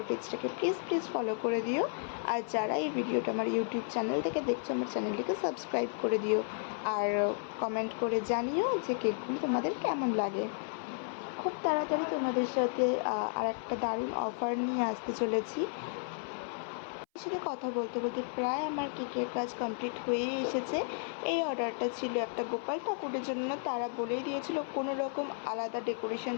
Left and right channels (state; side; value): silent; right; 56 dB below the other